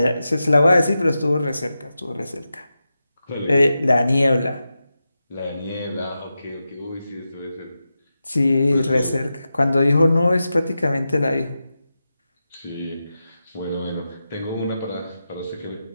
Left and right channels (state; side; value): inverted; both; correlation -0.90